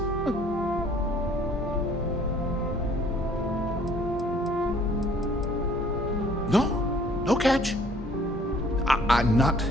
No catch. I'm not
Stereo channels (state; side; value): normal; both; correlation 0.57